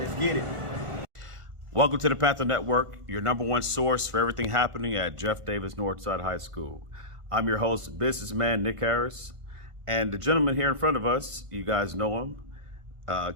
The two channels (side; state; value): left; late; 1.4 ms